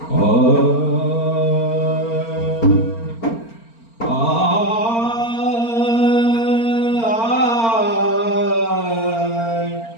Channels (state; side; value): late; right; 4.4 ms